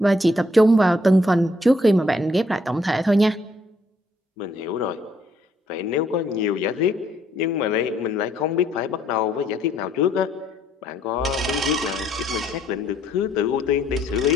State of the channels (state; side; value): normal; both; correlation 0.69